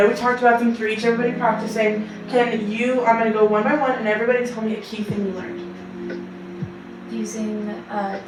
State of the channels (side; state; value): both; identical; correlation 1.00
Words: we talked about them for each, everybody practicing. I'm going to go one by one and everybody tell me a key thing you learned. Using